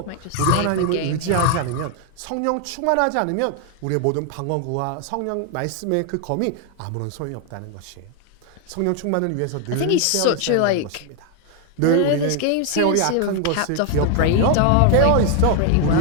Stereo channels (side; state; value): both; different; correlation 0.00